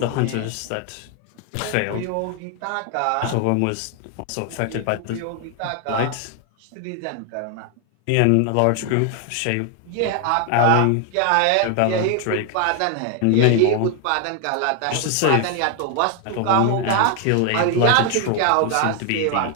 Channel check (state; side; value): different; both; correlation 0.00